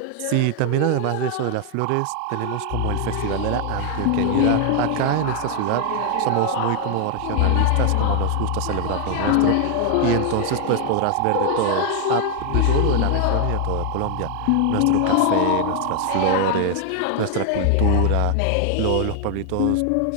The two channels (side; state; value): both; different; correlation 0.00